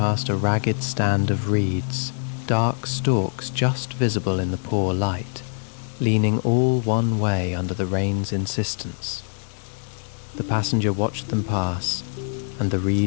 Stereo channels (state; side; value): silent; right; 63 dB below the other